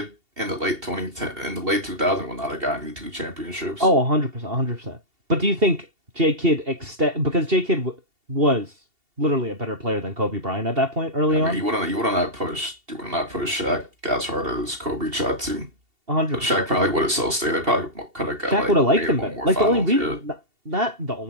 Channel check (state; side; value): late; left; 2.7 ms